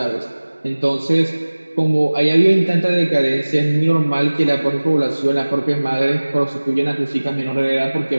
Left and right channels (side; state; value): both; inverted; correlation -1.00